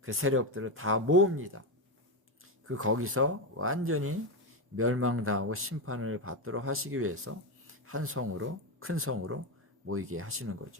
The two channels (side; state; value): left; late; 1.1 ms